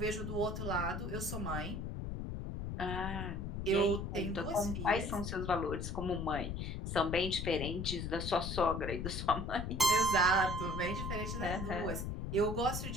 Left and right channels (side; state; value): left; noise; rumble, 4 dB below the sound